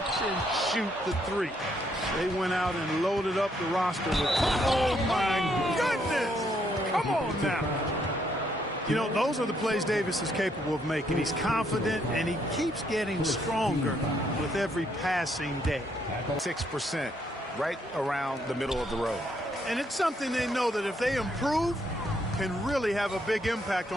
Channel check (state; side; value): normal; both; correlation 0.72